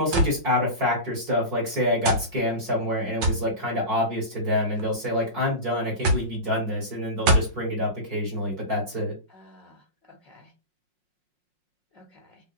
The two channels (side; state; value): left; late; 5.5 ms